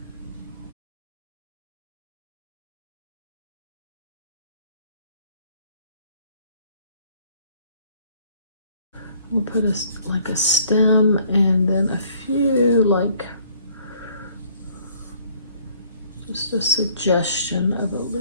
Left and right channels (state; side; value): inverted; both; correlation -0.60